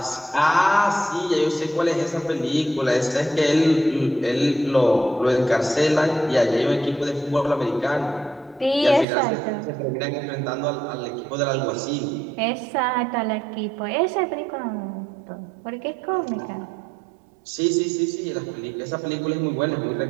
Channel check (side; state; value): left; drops out; at 9.1 s